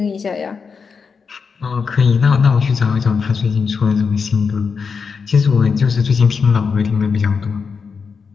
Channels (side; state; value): right; quieter; 5.5 dB